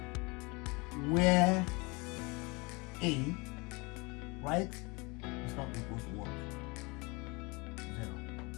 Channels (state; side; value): quieter; right; 27.2 dB